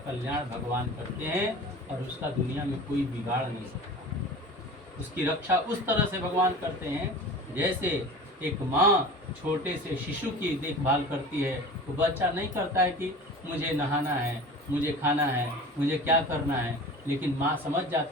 कल्याण भगवान करते हैं और उसका दुनिया में कोई बिगाड़ नहीं सकता। उसकी रक्षा उस तरह से भगवान करते हैं जैसे एक माँ छोटे से शिशु की देखभाल करती है। तो बच्चा नहीं करता है कि मुझे नहाना है, मुझे खाना है, मुझे क्या करना है, लेकिन माँ समझ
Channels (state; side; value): normal; both; correlation 0.37